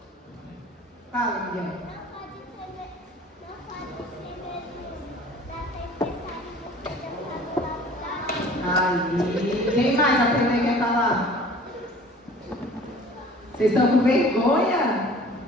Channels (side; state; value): both; normal; correlation 0.47